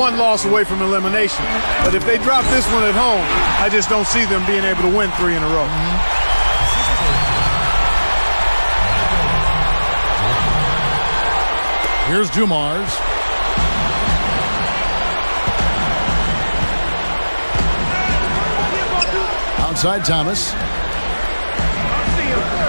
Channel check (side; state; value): both; inverted; correlation -1.00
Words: loss away from elimination. But if they drop this one at home, I just don't see them being able to win 3 in a row. Here's Dumars. Outside Thomas.